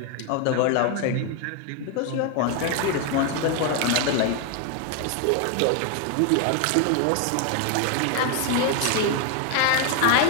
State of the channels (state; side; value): different; both; correlation 0.01